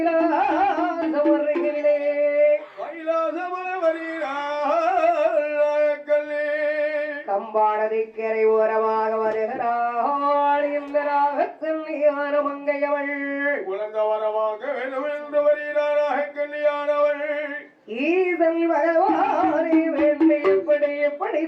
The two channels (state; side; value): identical; both; correlation 1.00